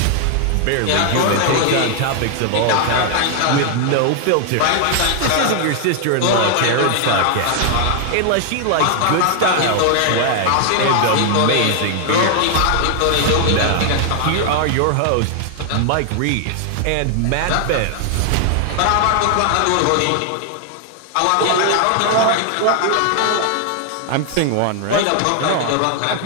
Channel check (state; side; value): different; both; correlation 0.00